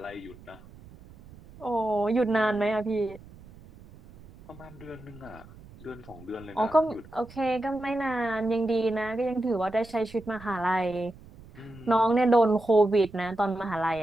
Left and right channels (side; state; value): right; noise; rumble, 20 dB below the sound